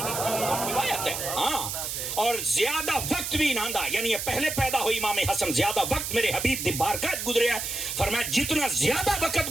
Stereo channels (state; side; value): noise; right; hiss, 4 dB below the sound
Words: ہاں اور زیادہ وقت بھی نہ دا یعنی پہلے پیدا ہوئی امام حسن زیادہ وقت میرے حبیب دی بارگاہ گزریا فرمایا جتنا زیادہ